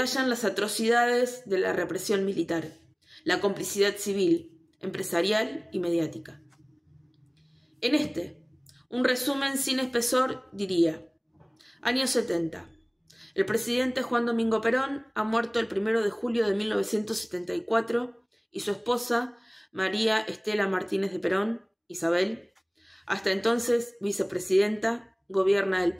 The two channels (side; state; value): both; identical; correlation 1.00